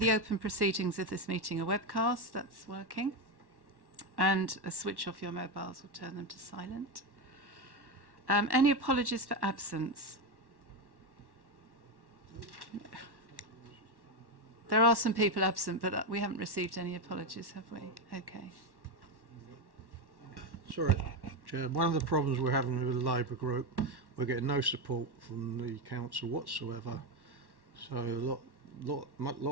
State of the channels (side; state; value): left; late; 1.1 ms